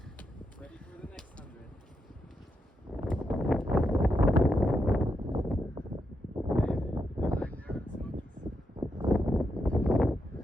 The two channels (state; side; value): normal; both; correlation 0.83